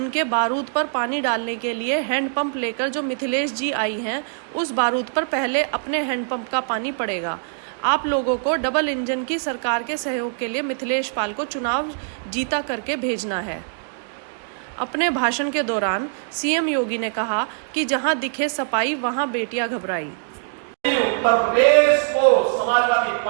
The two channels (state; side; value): silent; left; digital silence